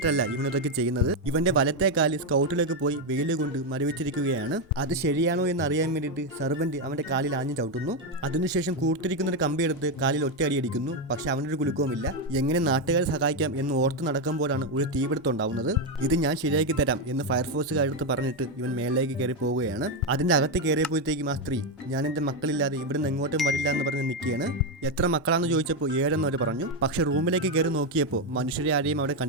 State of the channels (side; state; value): both; normal; correlation 0.06